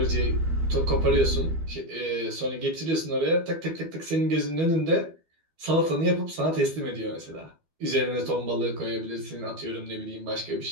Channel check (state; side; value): late; left; 12 ms